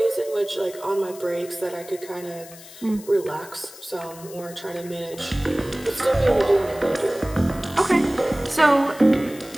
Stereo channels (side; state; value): left; noise; hiss, 18 dB below the sound